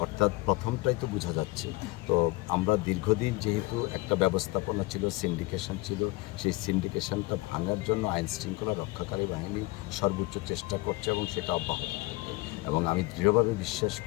অর্থাৎ প্রথমটাই তো বোঝা যাচ্ছে। তো আমরা দীর্ঘদিন যেহেতু একটা ব্যবস্থাপনা ছিল, সিন্ডিকেশন ছিল, সেই সিন্ডিকেশনটা ভাঙার জন্য আইন শৃঙ্খলা রক্ষাকারী বাহিনী সর্বোচ্চ চেষ্টা করছে এবং সেটা অব্যাহত থাকবে। এবং আমি দৃঢ়ভাবে বিশ্বাস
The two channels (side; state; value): right; quieter; 21.8 dB